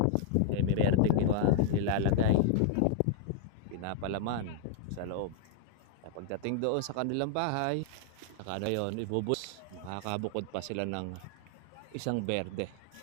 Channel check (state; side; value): different; both; correlation 0.00